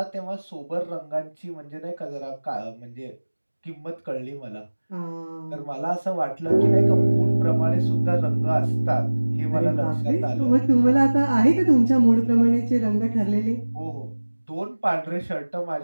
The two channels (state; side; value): inverted; both; correlation -1.00